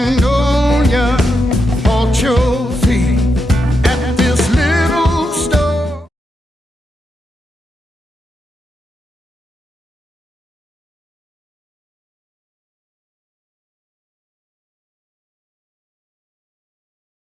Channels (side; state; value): both; normal; correlation 0.84